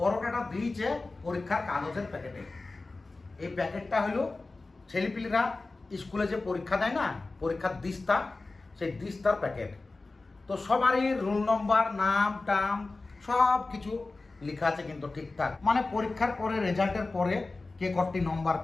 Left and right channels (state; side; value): quieter; right; 3.4 dB